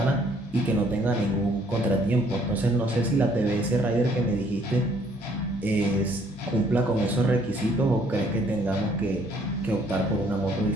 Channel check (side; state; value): both; normal; correlation 0.63